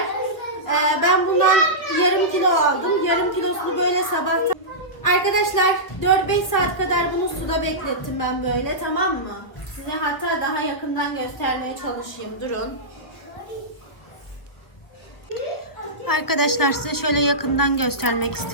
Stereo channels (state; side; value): late; right; 1.4 ms